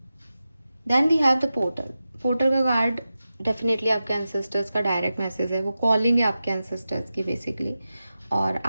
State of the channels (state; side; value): inverted; both; correlation -0.92